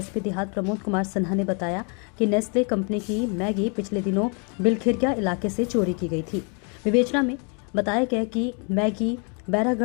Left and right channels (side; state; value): right; quieter; 36.4 dB